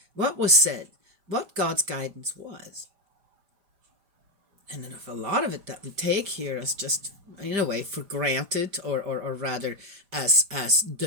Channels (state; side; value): late; left; 5.0 ms